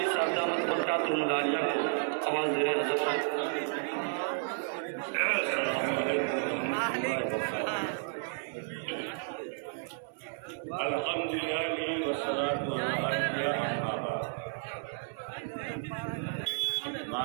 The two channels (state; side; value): silent; left; 56 dB below the other